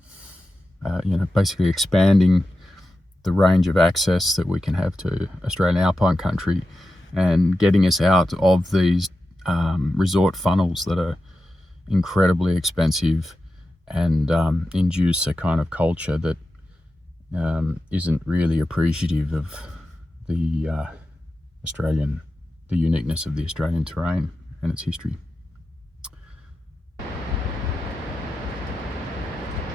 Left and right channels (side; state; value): both; normal; correlation 0.91